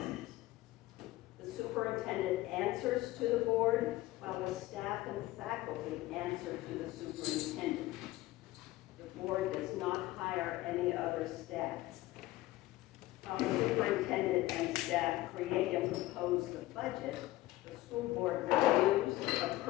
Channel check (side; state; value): right; quieter; 17.5 dB